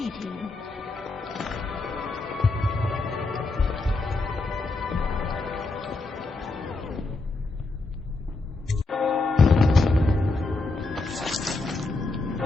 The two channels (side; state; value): right; quieter; 3.3 dB